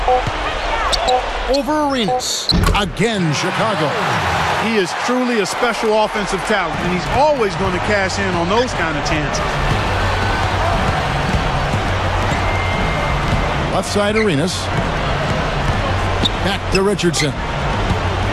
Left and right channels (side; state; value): both; identical; correlation 1.00